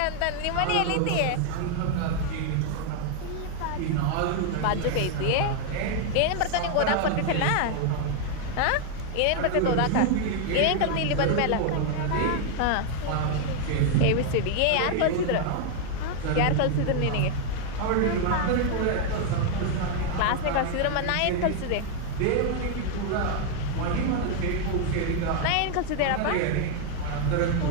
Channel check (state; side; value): different; both; correlation 0.00